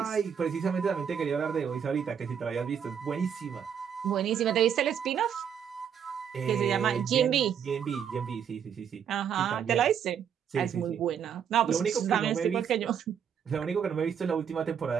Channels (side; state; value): left; quieter; 8.0 dB